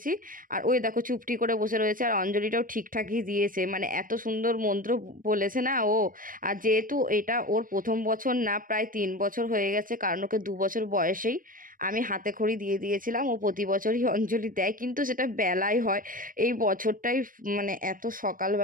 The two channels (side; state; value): left; late; 0.40 ms